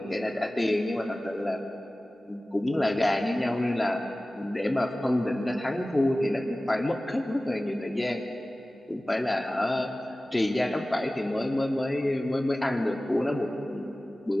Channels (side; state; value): both; normal; correlation 0.97